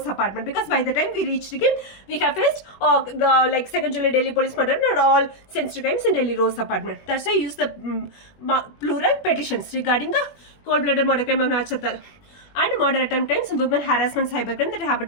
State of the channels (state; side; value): late; right; 20 ms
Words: apartment. Because by the time we reached him, we have faced like 2nd July Delhi police murder and all sensitive crimes in Delhi Rose apartment. That's why I use the plural petitions regarding the cold-blooded murder crime of Nachtar and murder attempt crimes, women harassment, cybercrime that happened